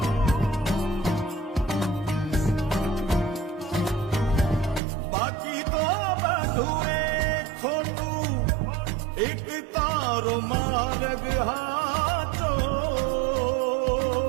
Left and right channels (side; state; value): left; drops out; at 4.8 s